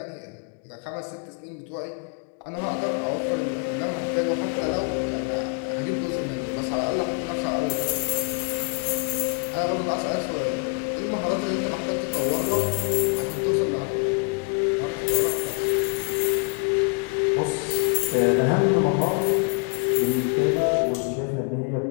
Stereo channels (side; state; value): right; quieter; 37.8 dB